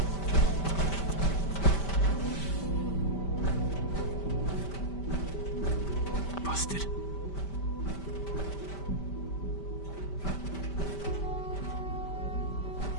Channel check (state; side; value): late; right; 5.1 ms